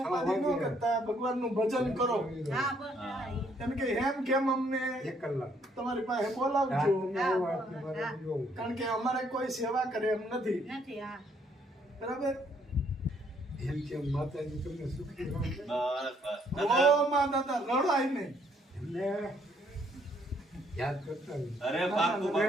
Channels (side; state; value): both; normal; correlation 0.68